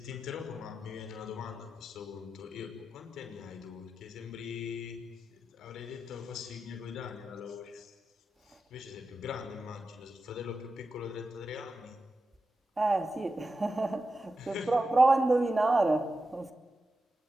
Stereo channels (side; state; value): both; normal; correlation 0.91